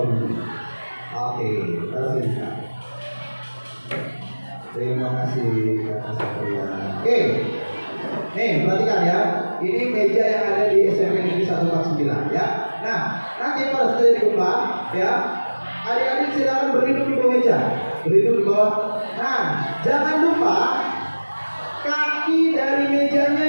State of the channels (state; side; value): inverted; both; correlation -1.00